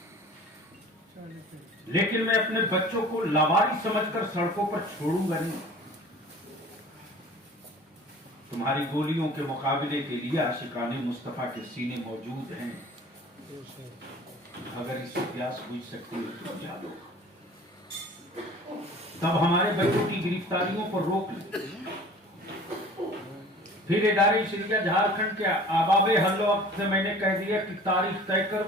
लेकिन मैं अपने बच्चों को लावारिस समझकर सड़कों पर छोड़ूंगा नहीं। तुम्हारी गोलियों के मुकाबले के लिए आशिकाने मुस्तफा के सीने मौजूद हैं, अगर इससे प्यास बुझ सकती है तो बुझा दो। तब हमारे बच्चों की गिरफ्तारियों पर रोक ली। फिर इदारे शरिया झारखंड के आबाबे हल्लो से मैंने कह दिया कि तारीख तय कर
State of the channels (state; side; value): normal; both; correlation 0.45